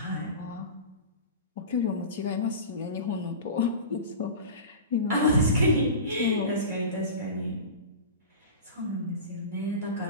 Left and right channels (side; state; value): both; inverted; correlation -0.30